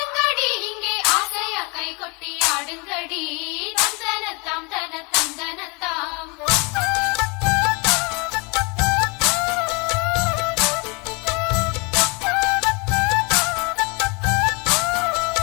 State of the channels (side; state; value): right; quieter; 30.7 dB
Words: இங்கே ஆசையா கை கொட்டி ஆடுங்கடி. தந்தனத்தாம் தன தந்தனத்தாம்.